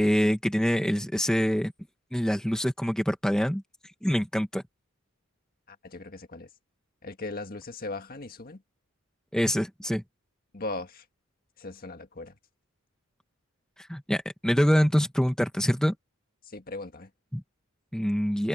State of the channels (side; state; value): both; normal; correlation 0.94